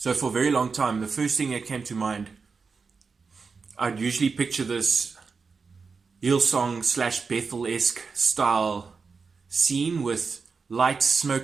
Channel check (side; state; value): left; quieter; 5.0 dB